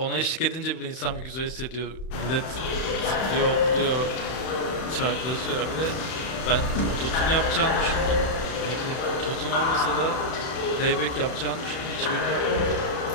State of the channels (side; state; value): right; late; 31 ms